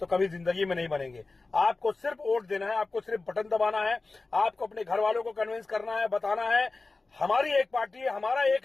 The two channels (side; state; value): right; quieter; 3.6 dB